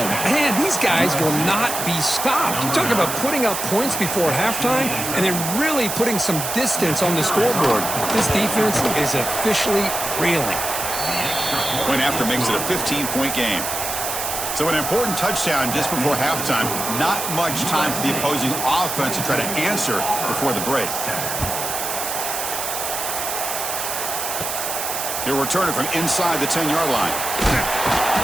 man, these guys will not be stopped. You talk about putting up points before halftime and then really putting some distance on the scoreboard. This defense is officially reeling. Point after makes it a 15-point game. So an important touchdown just before halftime. Not much time for the opposing offense to try to answer before the break. He'll return it from inside the 10-yard line.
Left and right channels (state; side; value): noise; right; hiss, 3 dB below the sound